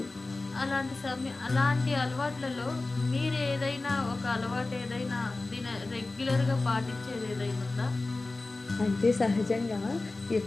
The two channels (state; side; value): quieter; right; 3.3 dB